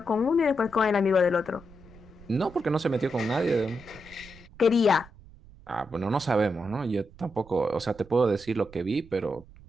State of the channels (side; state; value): right; noise; rumble, 22 dB below the sound